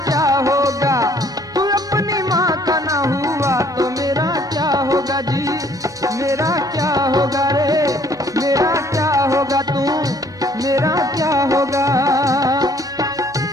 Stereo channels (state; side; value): noise; right; hum, 25 dB below the sound